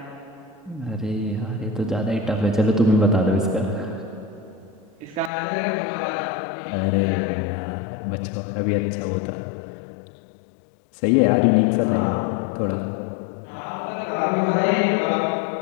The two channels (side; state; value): right; drops out; at 5.3 s